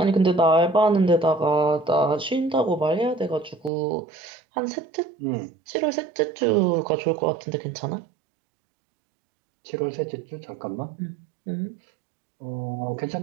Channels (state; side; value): drops out; left; at 3.7 s